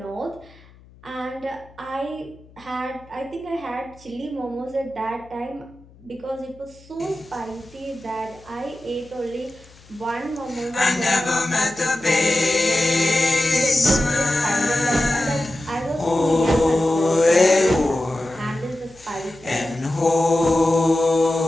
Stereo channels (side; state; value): left; noise; hum, 25 dB below the sound